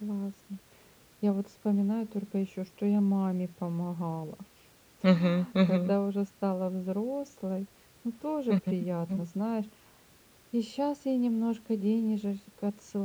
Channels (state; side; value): identical; both; correlation 1.00